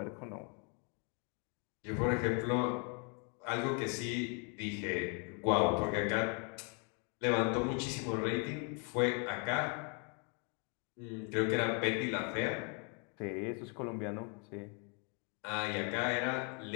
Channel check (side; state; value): right; quieter; 36.5 dB